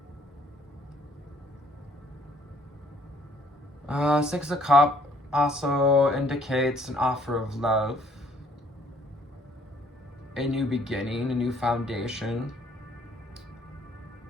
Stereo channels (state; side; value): normal; both; correlation 0.62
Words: Six of Cups also indicates an offer of love, a new beginning, a new foundation.